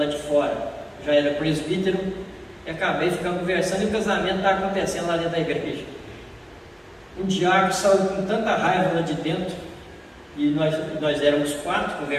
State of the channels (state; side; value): identical; both; correlation 1.00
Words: de fora. Já era presbítero e acabei ficando conversando e o casamento estava acontecendo lá dentro da igreja. Um diácono saiu com tanta raiva lá de dentro e nós éramos 4